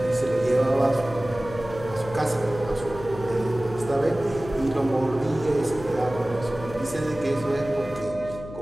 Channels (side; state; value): left; noise; hum, 13 dB below the sound